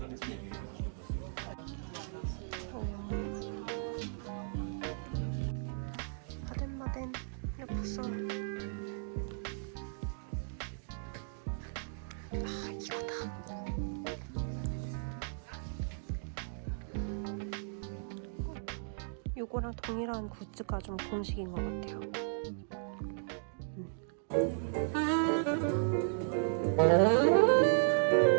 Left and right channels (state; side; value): silent; left; digital silence